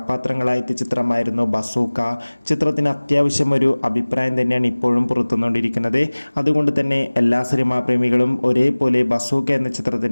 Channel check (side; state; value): both; inverted; correlation -1.00